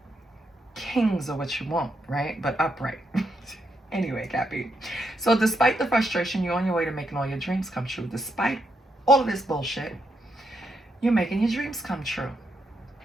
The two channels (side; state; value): both; normal; correlation 0.80